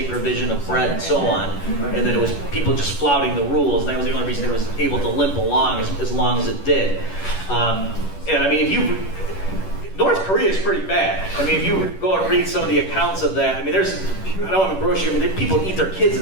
provision of bread and so on, and then it was people just flouting the rules, and that was the only reason it was able to limp along as long as it did. And I mean, North Korea is pretty bad. I mean, if you go and read some of the accounts of that, I mean, I don't have a brochure, but people eat their kids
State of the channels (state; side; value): late; right; 10 ms